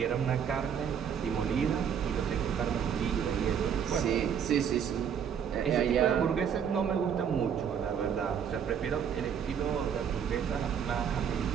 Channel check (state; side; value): quieter; left; 7.9 dB